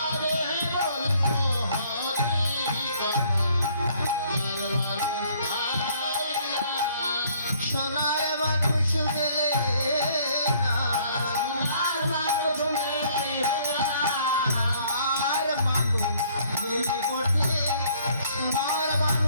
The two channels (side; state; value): both; inverted; correlation -0.61